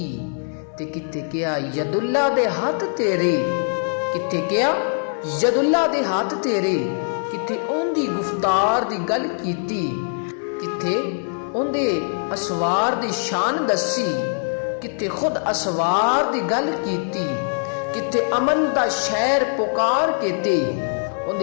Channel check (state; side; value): silent; right; digital silence